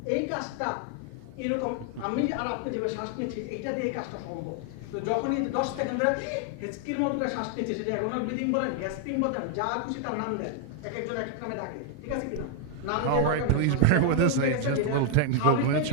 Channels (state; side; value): different; both; correlation 0.00